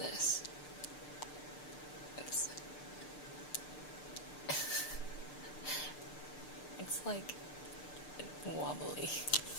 It's like wobbly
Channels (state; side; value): late; right; 6.7 ms